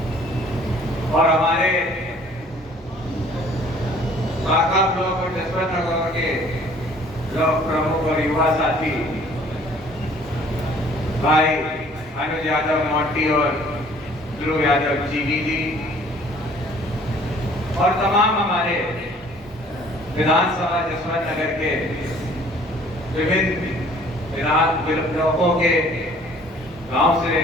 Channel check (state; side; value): normal; both; correlation 0.55